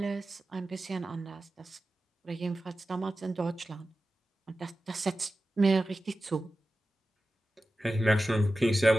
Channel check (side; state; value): both; normal; correlation 0.94